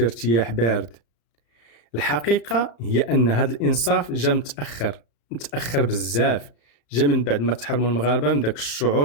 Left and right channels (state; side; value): late; right; 35 ms